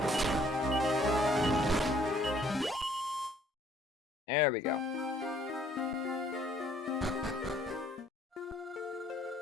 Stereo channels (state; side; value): normal; both; correlation 0.61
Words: There we go.